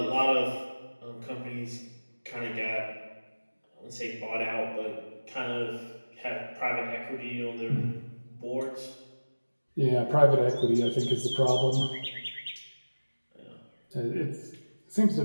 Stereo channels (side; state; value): both; inverted; correlation -1.00